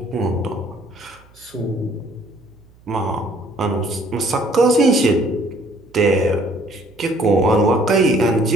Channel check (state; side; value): noise; right; hum, 28 dB below the sound